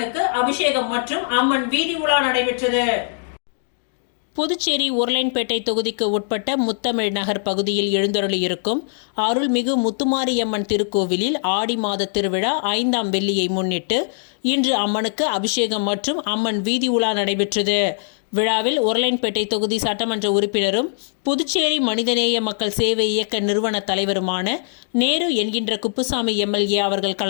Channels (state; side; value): silent; right; digital silence